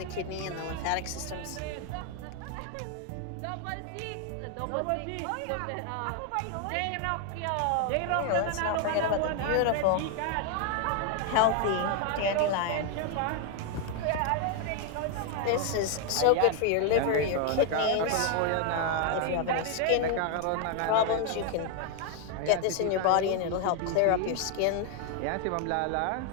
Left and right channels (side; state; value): both; different; correlation 0.01